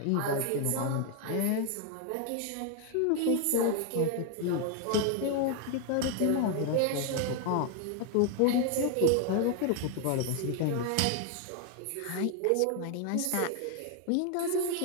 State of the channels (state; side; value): different; both; correlation 0.01